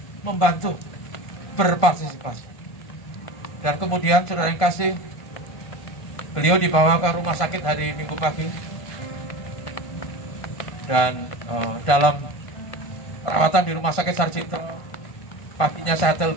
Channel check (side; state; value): right; late; 1.5 ms